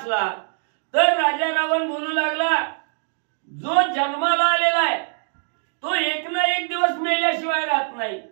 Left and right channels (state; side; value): silent; left; digital silence